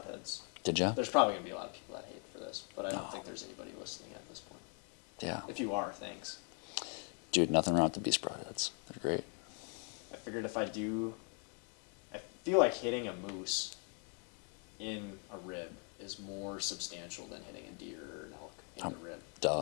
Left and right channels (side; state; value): right; quieter; 39.7 dB